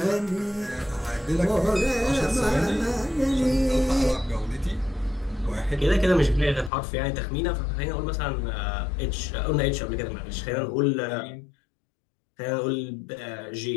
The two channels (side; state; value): right; drops out; at 6.7 s